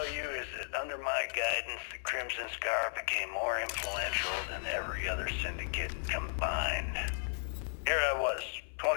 you is that under my guidance, the Crimson Scar became more influential than every other syndicate combined. Here I was,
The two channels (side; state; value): right; silent; 54 dB below the other